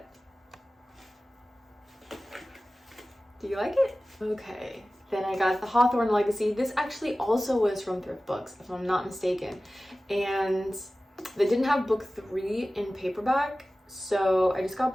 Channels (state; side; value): normal; both; correlation 0.96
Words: Do you like it? Okay. Then I got the Hawthorne Legacy. This actually also was from Thriftbooks, if I'm not mistaken. And they didn't have book 3 in paperback, so I just got